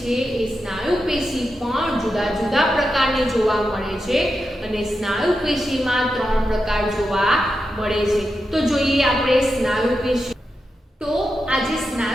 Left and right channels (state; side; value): normal; both; correlation 0.88